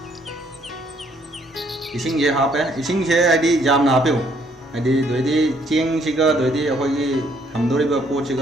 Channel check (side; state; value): both; normal; correlation 0.66